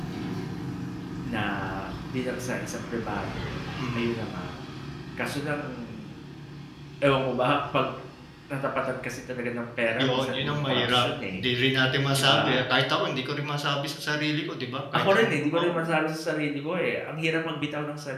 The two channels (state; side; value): identical; both; correlation 1.00